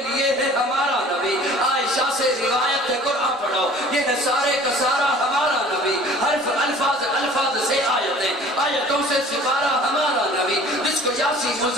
لیے ہے ہمارا نبی. عائشہ سے روایت ہے قرآن پڑھو یہ ہے سارے کا سارا ہمارا نبی. حرف الفاظ سے آیتوں سے سپارہ ہمارا نبی. جس کو یاسین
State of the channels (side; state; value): both; normal; correlation 0.48